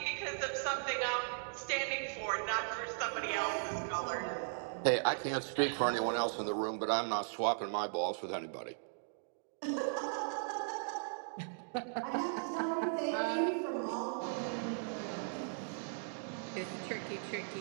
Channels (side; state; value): left; silent; digital silence